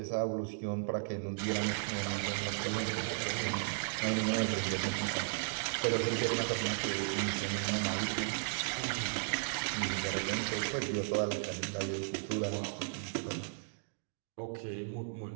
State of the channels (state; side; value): silent; left; digital silence